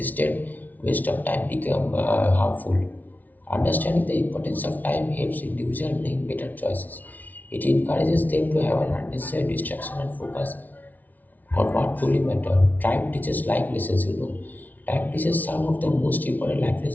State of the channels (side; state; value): right; late; 0.077 ms